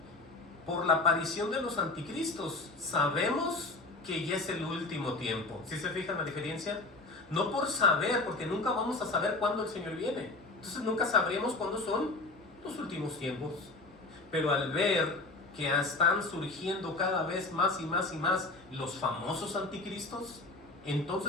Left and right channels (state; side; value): quieter; right; 3.1 dB